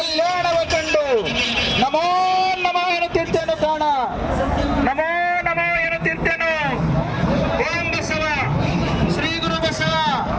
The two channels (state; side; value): identical; both; correlation 1.00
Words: ನಮೋ ನಮೋ ಎನ್ನುತ್ತಿರ್ತೇನು ಪ್ರಾಣ, ನಮೋ ನಮೋ ಎನ್ನುತ್ತಿರ್ತೇನು. ಓಂ ಬಸವ, ಶ್ರೀ ಗುರು ಬಸವ,